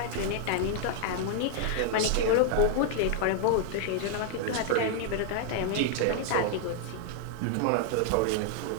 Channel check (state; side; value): different; both; correlation 0.00